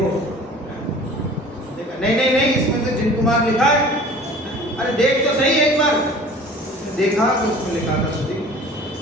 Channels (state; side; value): normal; both; correlation 0.45